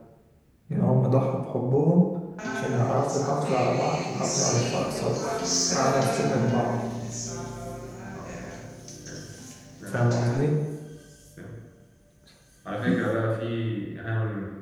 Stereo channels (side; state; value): both; identical; correlation 1.00